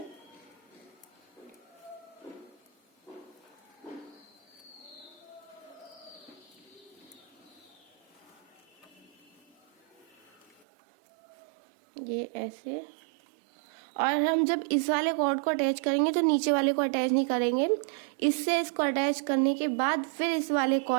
ये ऐसे। और हम जब इस वाले कॉर्ड को अटैच करेंगे तो नीचे वाले को अटैच नहीं करेंगे। इससे इसको अटैच करने के बाद फिर इस वाले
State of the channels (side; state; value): left; drops out; at 10.5 s